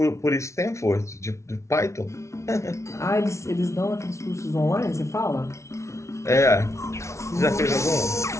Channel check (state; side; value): late; right; 0.14 ms